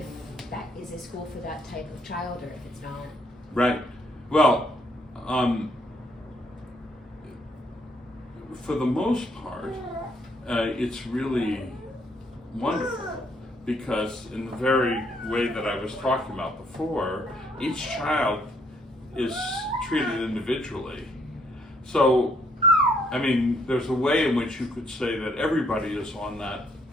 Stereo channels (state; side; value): normal; both; correlation 0.69